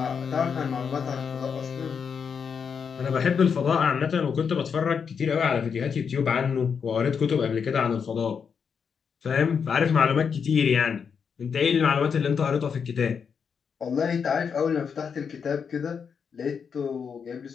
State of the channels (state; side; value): quieter; right; 6.5 dB